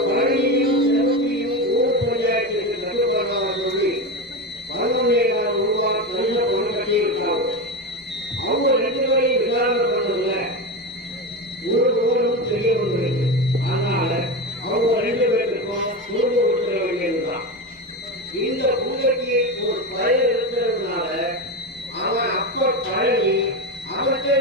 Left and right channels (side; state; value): both; normal; correlation 0.18